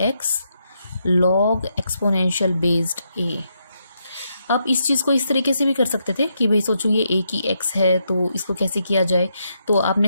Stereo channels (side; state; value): both; inverted; correlation -0.80